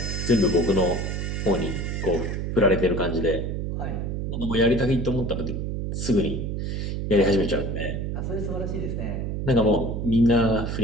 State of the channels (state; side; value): noise; right; hum, 2 dB below the sound